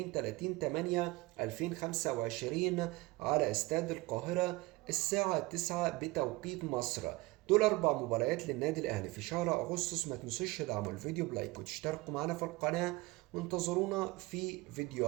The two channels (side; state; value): left; quieter; 21.4 dB